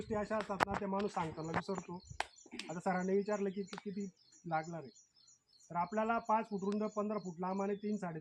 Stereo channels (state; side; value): identical; both; correlation 1.00